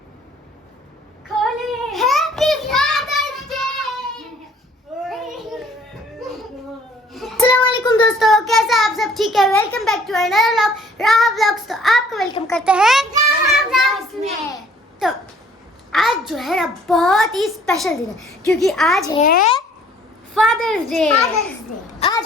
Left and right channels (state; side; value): normal; both; correlation 0.57